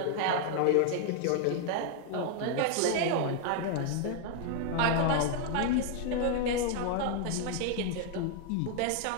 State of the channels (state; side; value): different; both; correlation 0.00